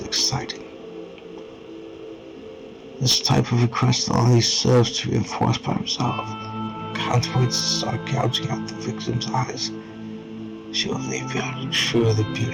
it exciting. This type of request only serves to reinforce my resolve. Can't wait to start gouging out the victim's eyes. She will leave behind truly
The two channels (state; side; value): identical; both; correlation 1.00